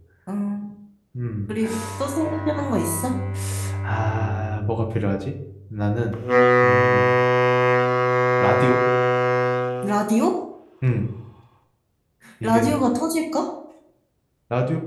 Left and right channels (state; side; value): identical; both; correlation 1.00